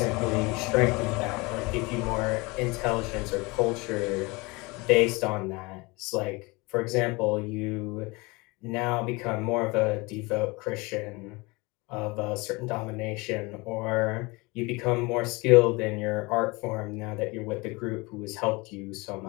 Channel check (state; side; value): quieter; right; 25.3 dB